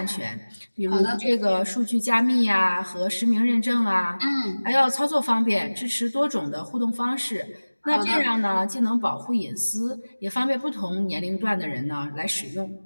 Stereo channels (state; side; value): inverted; both; correlation -1.00